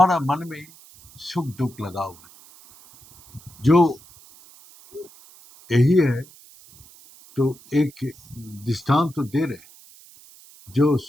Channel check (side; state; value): right; noise; hiss, 24 dB below the sound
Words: मन में सुख दुख लगा हुआ है। जो यही है, तो एक दृष्टांत तो दे रहे, जो